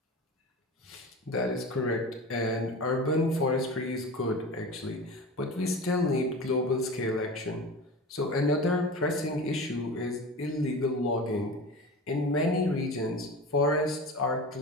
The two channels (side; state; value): both; normal; correlation 0.31